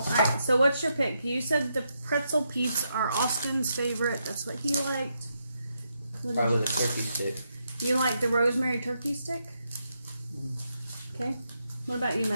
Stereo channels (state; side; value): inverted; both; correlation -0.81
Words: so what's your pick? You said the pretzel peeps are Austin's favorite. That's what he liked. Probably the turkey stick. You like the rosemary turkey stick? Okay. What about you,